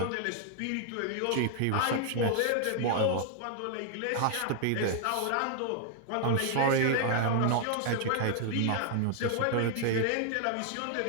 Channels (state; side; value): different; both; correlation 0.00